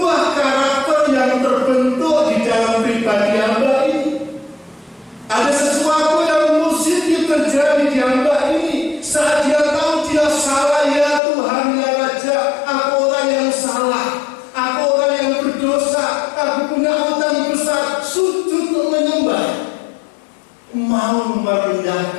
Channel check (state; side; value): drops out; right; at 11.2 s